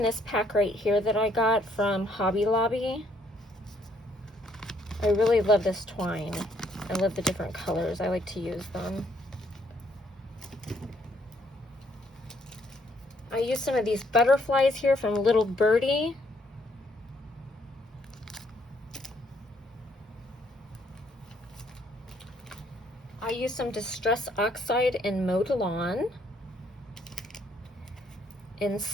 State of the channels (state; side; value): normal; both; correlation 0.68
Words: this pack right here that I got from Hobby Lobby. I really love this twine. I love the different colors. I like to use them. I used some of these butterflies here from Little Birdie. I used some Distress Oxide in Modelon, in